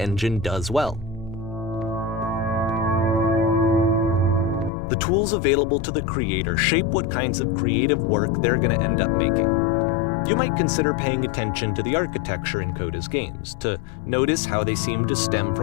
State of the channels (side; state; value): right; drops out; at 4.7 s